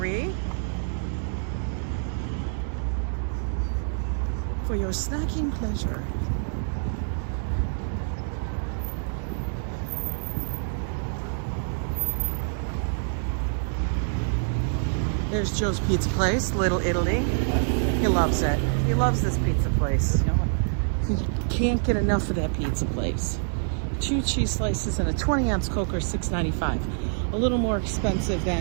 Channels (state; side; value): silent; left; digital silence